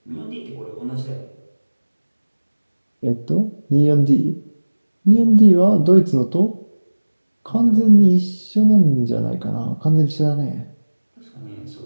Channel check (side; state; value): both; inverted; correlation -1.00